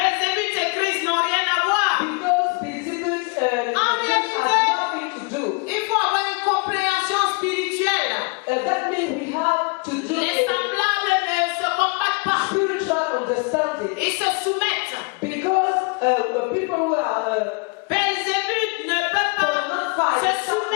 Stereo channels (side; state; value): right; quieter; 31.9 dB